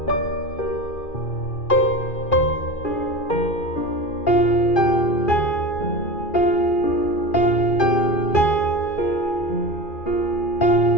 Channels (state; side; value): late; right; 2.4 ms